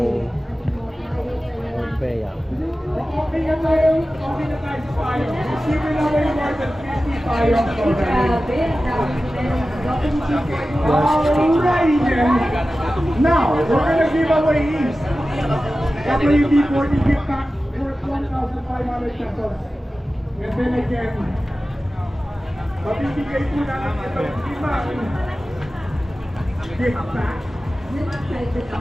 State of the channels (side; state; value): both; normal; correlation 0.95